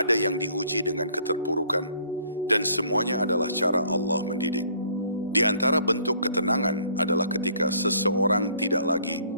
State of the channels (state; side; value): inverted; both; correlation -0.59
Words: yang diuji dengan keterpurukan, dan semuanya adalah cara Allah mendidik. Di antara bentuk ketenangan adalah ketika seseorang tidak lagi